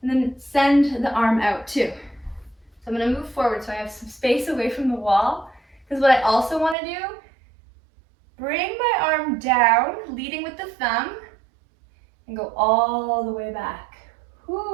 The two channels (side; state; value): left; drops out; at 6.8 s